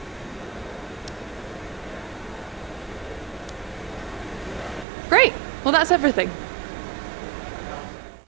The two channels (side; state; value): left; drops out; at 4.9 s